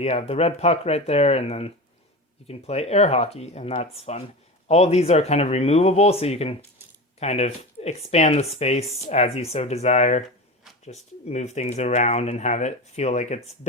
have the red puck right there, and then you can play air hockey, and that's fun. All of these are kind of removable, so you can kind of expand the space as you so desire. Just move things around and have it feel like it's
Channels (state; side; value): normal; both; correlation 0.26